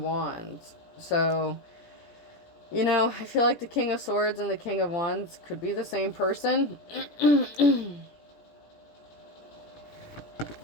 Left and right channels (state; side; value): late; right; 17 ms